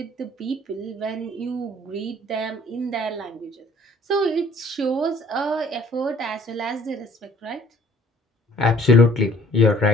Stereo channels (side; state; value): both; normal; correlation 0.56